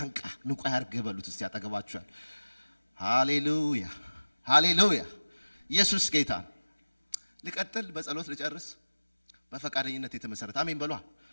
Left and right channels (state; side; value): inverted; both; correlation -1.00